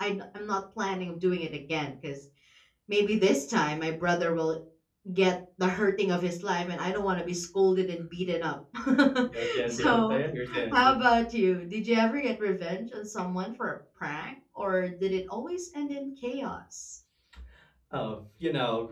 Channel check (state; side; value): identical; both; correlation 1.00